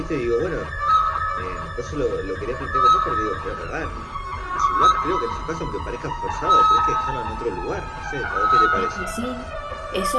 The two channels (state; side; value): identical; both; correlation 1.00